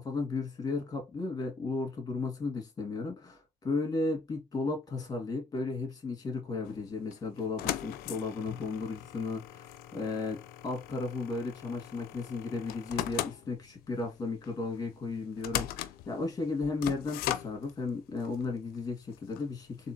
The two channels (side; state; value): right; quieter; 4.0 dB